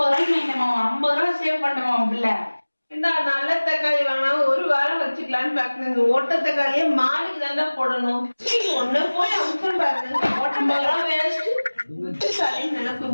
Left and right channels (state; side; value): inverted; both; correlation -1.00